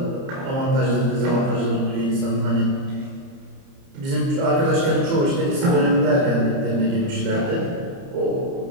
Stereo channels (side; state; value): left; late; 30 ms